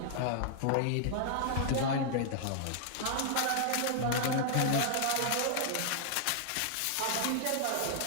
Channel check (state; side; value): different; both; correlation -0.01